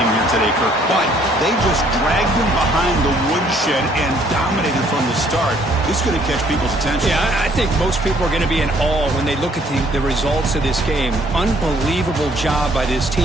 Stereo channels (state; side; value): normal; both; correlation 0.63